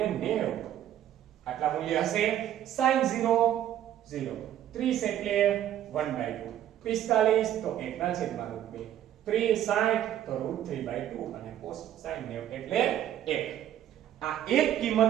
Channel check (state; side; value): quieter; left; 11.5 dB